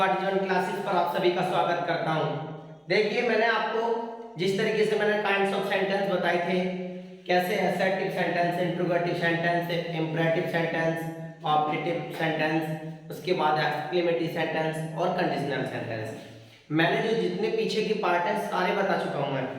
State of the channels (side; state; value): both; identical; correlation 1.00